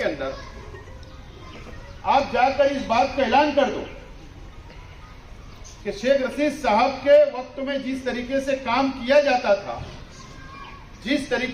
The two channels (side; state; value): both; identical; correlation 1.00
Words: अंदर आप जाकर इस बात का ऐलान कर दो कि शेख रशीद साहब के वक्त में जिस तरीके से काम किया जाता था, जिस